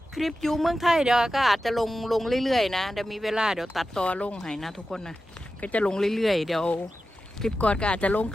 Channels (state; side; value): normal; both; correlation 0.92